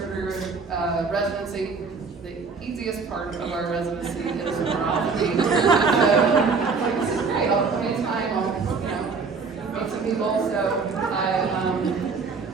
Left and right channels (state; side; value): quieter; left; 4.8 dB